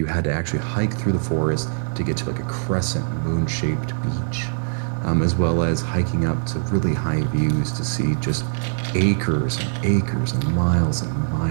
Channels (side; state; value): left; silent; digital silence